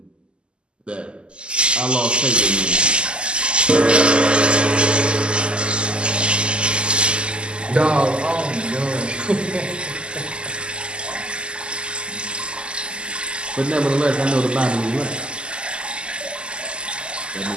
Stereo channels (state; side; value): late; left; 0.050 ms